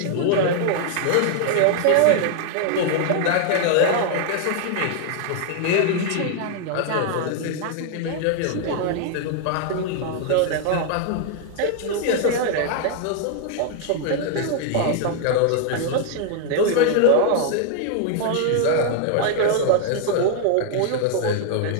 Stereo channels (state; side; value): different; both; correlation 0.00